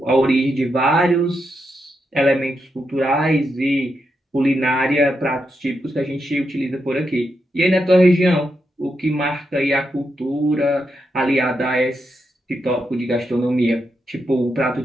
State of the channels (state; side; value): normal; both; correlation 0.84